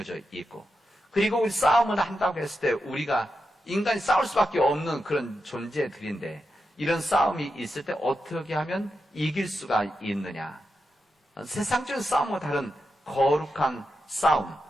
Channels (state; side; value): normal; both; correlation 0.88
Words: 있고, 그리고 우리 싸움을 한다고 했을 때 우리가 인간이 싸울 수밖에 없는 그런 존재들인데, 이런 싸움이 있을 때 어떻게 하면 이길 수가 있느냐? 세상적인 싸움과 다른 거룩한 싸움,